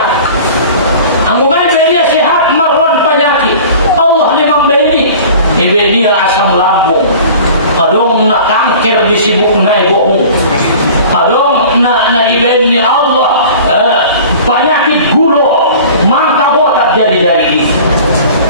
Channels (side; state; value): both; inverted; correlation -0.43